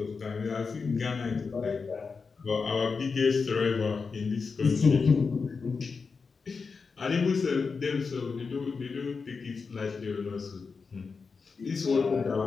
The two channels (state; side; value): quieter; right; 4.9 dB